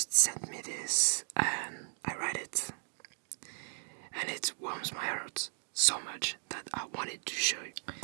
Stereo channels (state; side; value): silent; left; digital silence